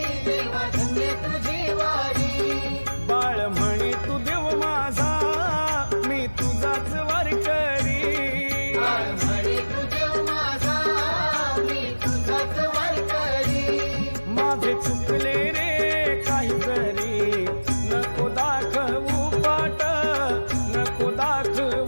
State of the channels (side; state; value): both; inverted; correlation -1.00